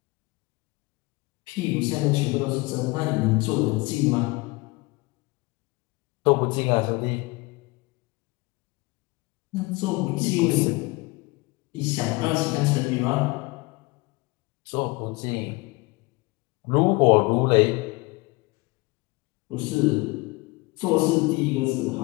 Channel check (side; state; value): right; quieter; 24.3 dB